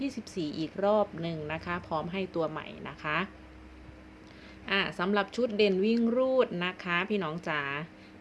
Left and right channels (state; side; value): identical; both; correlation 1.00